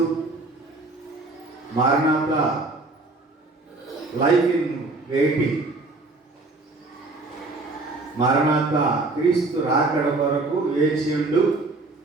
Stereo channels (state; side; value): quieter; left; 3.3 dB